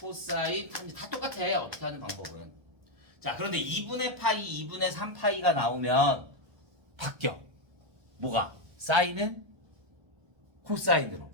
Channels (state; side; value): late; left; 1.3 ms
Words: 코사인, 탄젠트. 다 똑같아. 어떻게 하는 방법은. 자, 그런데 2분의 파이, 2분의 3파이가 나오면 바뀌어. 뭐가? 사인은 코사인으로,